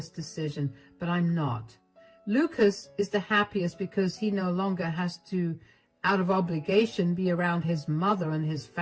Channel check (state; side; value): identical; both; correlation 1.00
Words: decision, but I'm not. Lucas is the happiest because he no longer has to, out of obligation, be around his mother and his